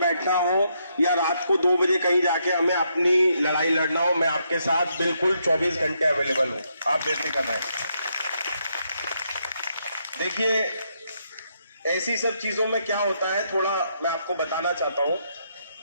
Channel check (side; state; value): both; inverted; correlation -0.77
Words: हो या रात को 2 बजे कहीं जाके हमें अपनी लड़ाई लड़ना हो, मैं आपके साथ बिल्कुल 24 घंटे अवेलेबल हूँ। आप बेफिक्र रहें। देखिए, ऐसी सब चीजों में क्या होता है, थोड़ा मैं आपको बताना चाहता हूँ।